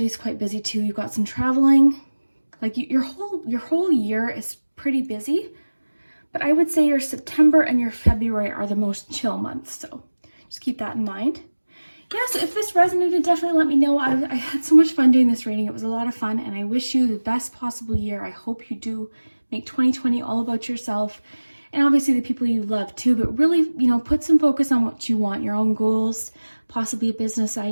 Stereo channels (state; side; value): inverted; both; correlation -1.00